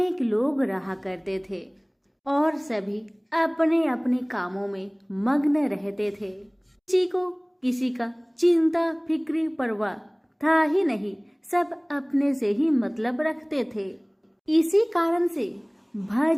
लोग रहा करते थे और सभी अपने अपने कामों में मग्न रहते थे। किसी को किसी का चिंता फिक्री परवाह था ही नहीं, सब अपने से ही मतलब रखते थे। इसी कारण से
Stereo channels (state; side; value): identical; both; correlation 1.00